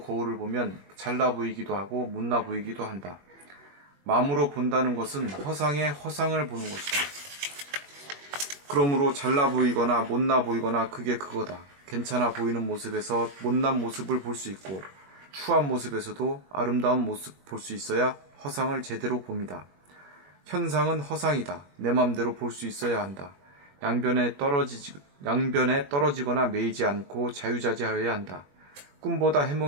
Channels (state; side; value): late; left; 21 ms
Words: 거울을 보면 잘나 보이기도 하고 못나 보이기도 한다. 마음으로 본다는 것은 허상의 허상을 보는 것이다. 그러므로 잘나 보이거나 못나 보이거나 그게 그거다. 괜찮아 보이는 모습에서 못난 모습을 볼 수 있고 추한 모습에서도 아름다운 모습 볼 수 있어야 허상을 제대로 봅니다. 현상은 허상이다. 내 맘대로 볼 수 있어야 한다. 양변에 떨어지거나 매이지 않고 자유자재하여야 한다. 꿈보다